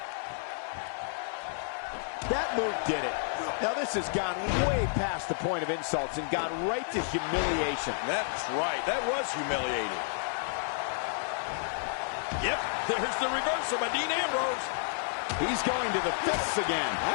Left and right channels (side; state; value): right; silent; digital silence